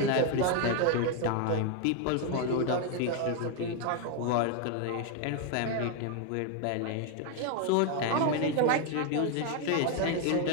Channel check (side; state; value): both; different; correlation 0.01